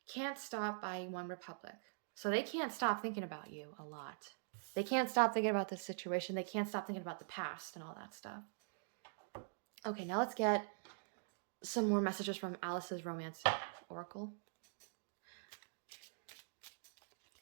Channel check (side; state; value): left; silent; digital silence